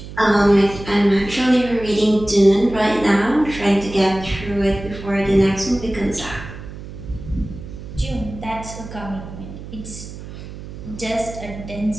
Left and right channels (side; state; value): right; noise; hum, 12 dB below the sound